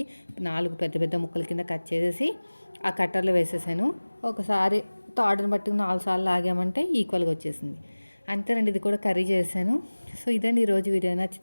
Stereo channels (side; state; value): both; inverted; correlation -1.00